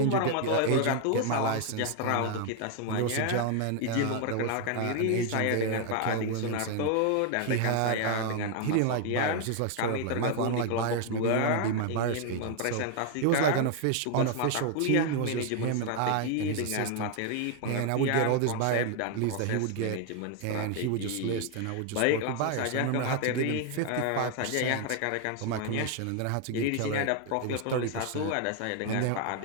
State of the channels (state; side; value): different; both; correlation 0.00